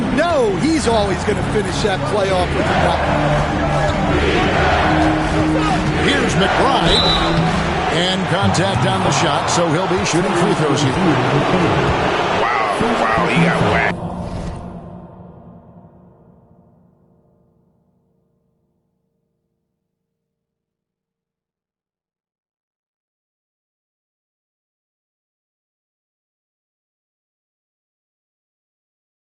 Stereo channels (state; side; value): identical; both; correlation 1.00